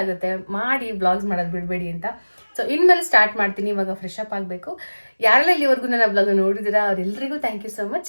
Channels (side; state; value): both; inverted; correlation -1.00